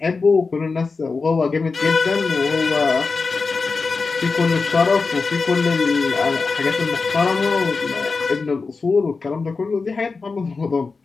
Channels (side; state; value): right; quieter; 4.4 dB